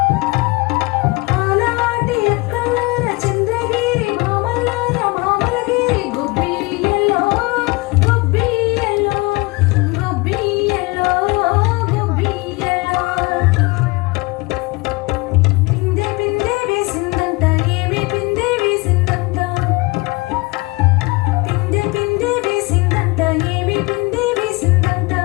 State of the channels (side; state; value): right; quieter; 25.0 dB